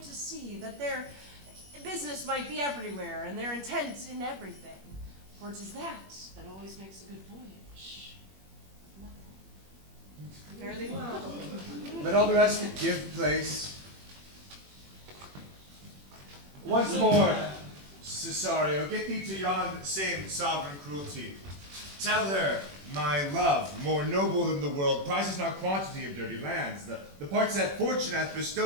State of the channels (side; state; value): left; late; 21 ms